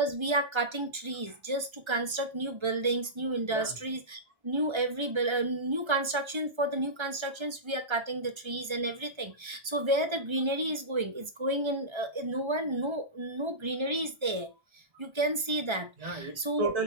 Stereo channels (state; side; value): late; left; 1.3 ms